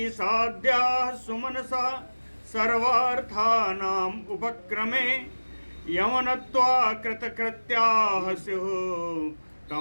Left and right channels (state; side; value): inverted; both; correlation -1.00